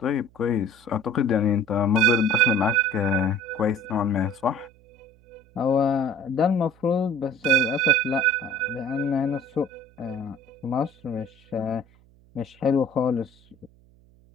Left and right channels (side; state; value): right; noise; hum, 29 dB below the sound